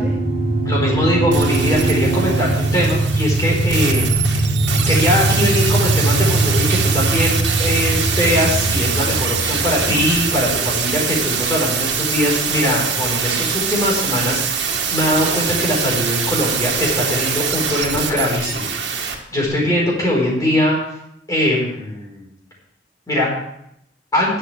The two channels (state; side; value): normal; both; correlation 0.46